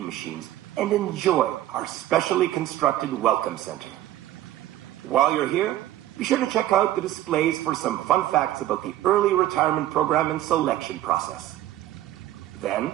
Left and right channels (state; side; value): quieter; left; 13.7 dB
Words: machines, and enjoy our specially constructed welcome center. While you're here, be sure to check out the displays for some fun facts about the early retirement program and selection process.